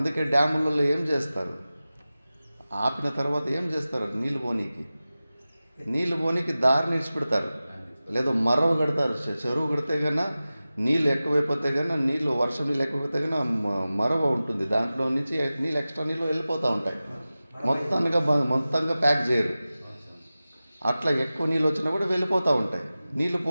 డ్యాములలో ఏం చేస్తారు? ఆపిన తర్వాత ఏం చేస్తారు? నీళ్ళు పోనీకి దారిని ఇచ్చిపెడతారు, లేదా మరవ కడతారు. చెరువు కడితే కన్నా నీళ్ళు ఎక్కువైపోతే కన్నా వర్షం నీళ్ళు ఎక్కువైతే కన్నా మరవ ఉంటుంది. దాంట్లో నుంచి నీళ్ళు ఎక్స్ట్రా నీళ్ళు వెళ్ళిపోతూ ఉంటాయి. మొత్తంగా ప్యాక్ చేయరు. అట్లా ఎక్కువ నీళ్ళు వచ్చినా కూడా వెళ్ళిపోతూ ఉంటాయి. నీళ్ళు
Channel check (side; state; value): both; inverted; correlation -0.96